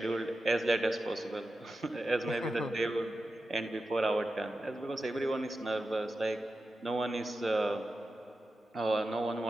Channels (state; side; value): normal; both; correlation 0.91